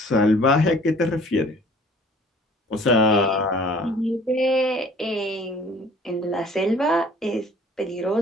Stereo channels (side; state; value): both; normal; correlation 0.52